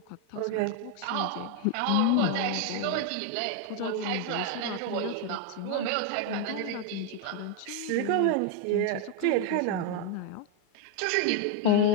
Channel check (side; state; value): both; different; correlation 0.01